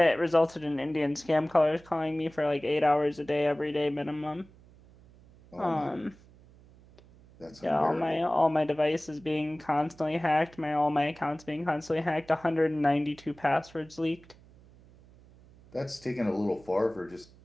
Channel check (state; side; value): noise; right; hum, 25 dB below the sound